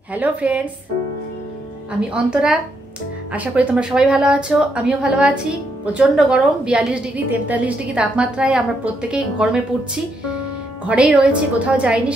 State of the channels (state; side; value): normal; both; correlation 0.77